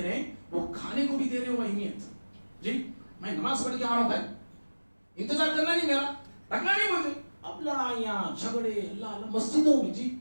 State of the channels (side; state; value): both; inverted; correlation -1.00